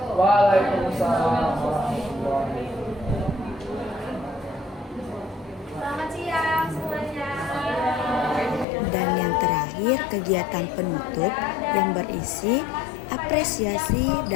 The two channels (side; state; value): right; drops out; at 8.7 s